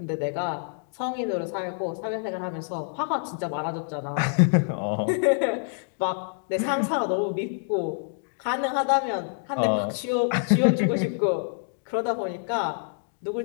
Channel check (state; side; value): silent; right; digital silence